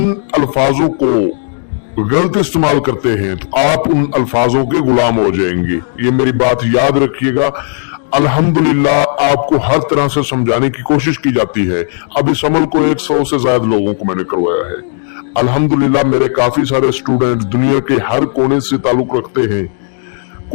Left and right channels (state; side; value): silent; right; digital silence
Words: अल्फाजों को गलत इस्तेमाल करते हैं तो आप उन अल्फाजों के गुलाम हो जाएंगे। ये मेरी बात याद रखिएगा। अल्हम्दुलिल्लाह आपको हर तरह से समझाने की कोशिश की जाती है। अब इस अमल को 100 से ज्यादा लोगों को मैंने करवाया है। अल्हम्दुलिल्लाह मेरे काफी सारे स्टूडेंट्स दुनिया के हर कोने से ताल्लुक रखते हैं।